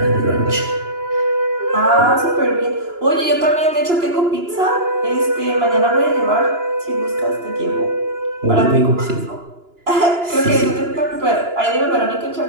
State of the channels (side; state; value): left; late; 2.9 ms